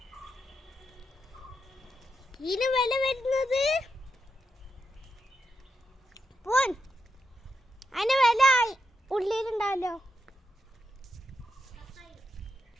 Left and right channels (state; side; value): normal; both; correlation 0.85